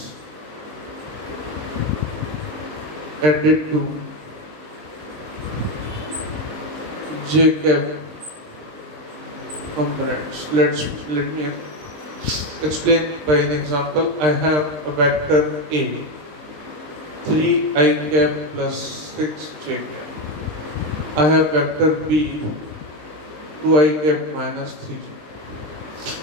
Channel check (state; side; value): late; left; 20 ms